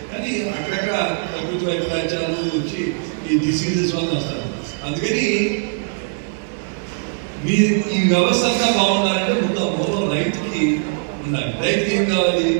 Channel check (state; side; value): silent; left; digital silence